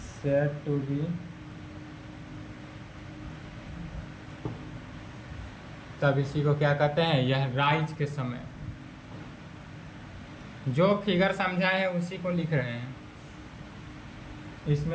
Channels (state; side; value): identical; both; correlation 1.00